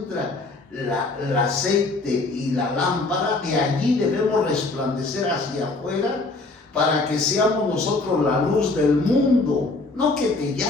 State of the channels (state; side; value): quieter; right; 3.3 dB